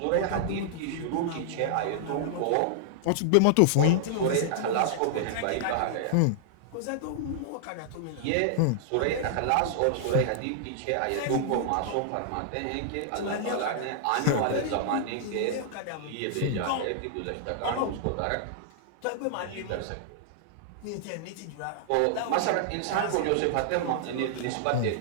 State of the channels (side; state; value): both; different; correlation -0.01